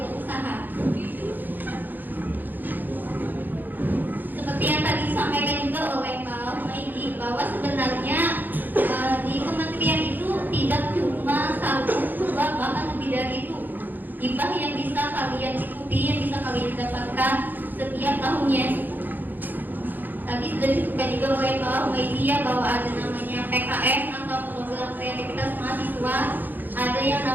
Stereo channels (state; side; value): late; left; 0.087 ms